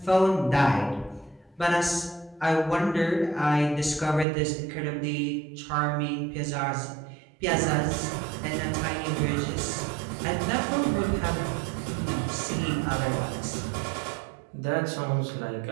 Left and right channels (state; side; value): drops out; left; at 4.2 s